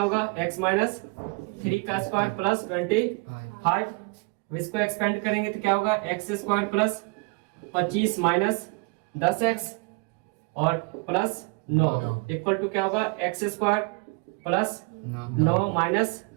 x माइनस 3 का स्क्वायर प्लस 25। इसको एक्सपेंड करेंगे तो क्या होगा, x square plus 25 minus 10x और प्लस 9 इक्वल टू क्या होगा, x square plus 9 minus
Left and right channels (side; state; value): left; quieter; 30.8 dB